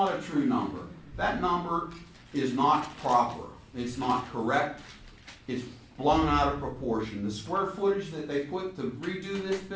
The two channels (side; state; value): both; identical; correlation 1.00